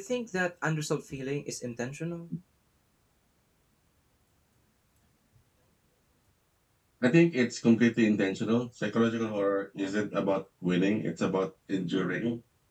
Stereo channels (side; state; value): both; identical; correlation 1.00